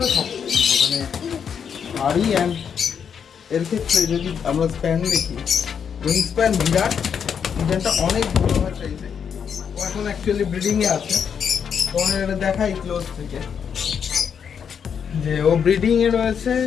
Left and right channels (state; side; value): quieter; right; 7.3 dB